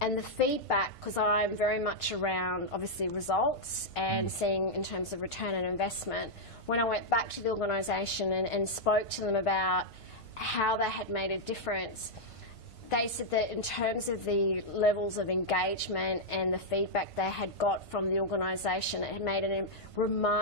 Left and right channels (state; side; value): late; right; 1.5 ms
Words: the feedback, because I'm very much around obviously results and seeing in terms of return on investment, when I went back to the organisation and spoke to them about how they had made a difference, they said that in terms of the levels of engagement and the feedback they had got from the organisation, it had made a